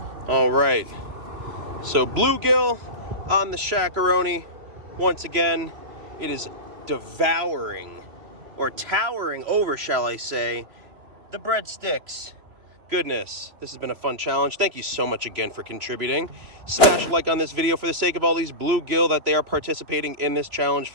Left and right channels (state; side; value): late; left; 3.0 ms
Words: All right. So bluegill on the Shaq-a-roni. Once again, it is devouring, or towering over, shall I say, the breadsticks. Goodness, this has been a fun challenge. Thank you so much again for contributing. Smash a like on this video for the sake of all these bluegill that they are participating in this challenge